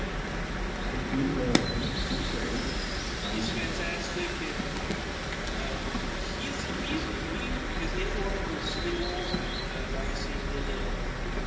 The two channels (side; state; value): both; identical; correlation 1.00